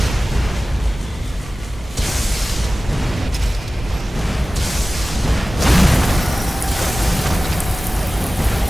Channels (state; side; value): normal; both; correlation 0.97